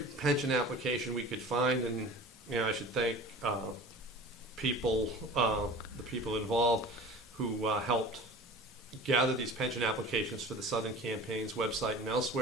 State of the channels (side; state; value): both; normal; correlation 0.39